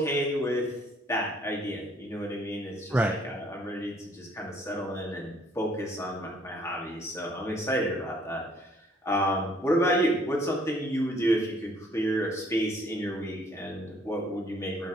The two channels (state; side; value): normal; both; correlation 0.62